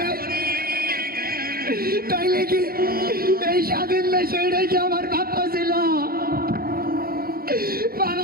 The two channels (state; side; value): late; left; 0.44 ms